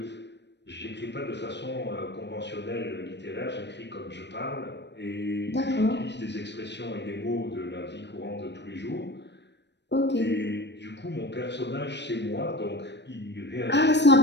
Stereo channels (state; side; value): late; right; 0.51 ms